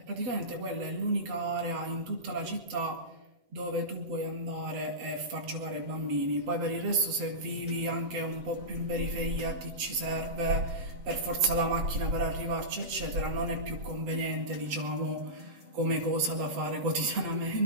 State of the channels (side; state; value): left; late; 8.0 ms